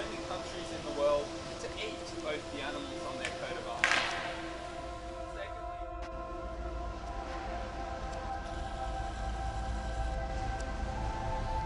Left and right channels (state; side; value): identical; both; correlation 1.00